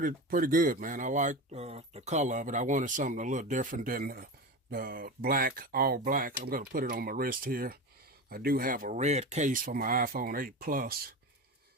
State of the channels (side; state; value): both; normal; correlation 0.25